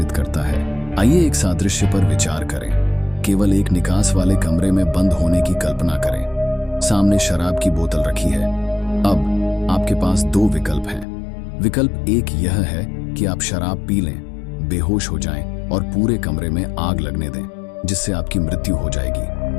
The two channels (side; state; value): right; drops out; at 11.1 s